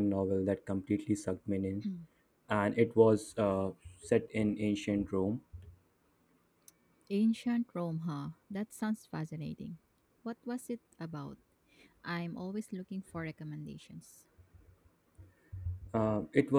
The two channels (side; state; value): both; identical; correlation 1.00